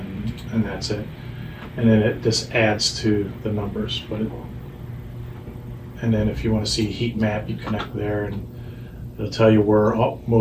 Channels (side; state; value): both; identical; correlation 1.00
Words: and that's it. And then this adds to the numbers. And then if you want to see a heat map, you connect there, and it'll tell you where